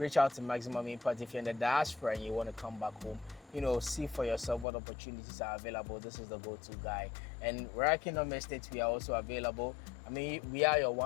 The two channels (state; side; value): drops out; right; at 4.7 s